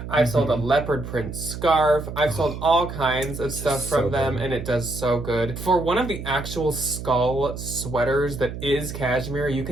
I've sold a leopard print scarf. I've sold all kinds of stuff from them, and it does so good. For one of the actual skull sweaters that is cashmere, you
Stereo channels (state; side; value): noise; right; hum, 8 dB below the sound